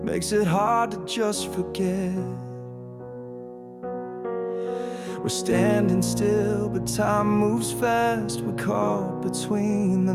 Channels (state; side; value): identical; both; correlation 1.00